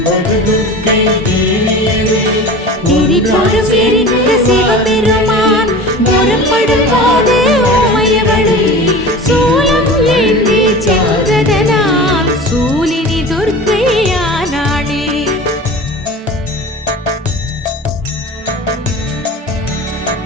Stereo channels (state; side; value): normal; both; correlation 0.35